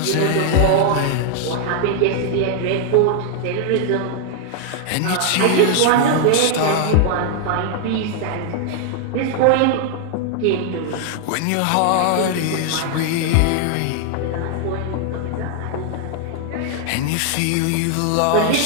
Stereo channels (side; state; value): both; different; correlation 0.00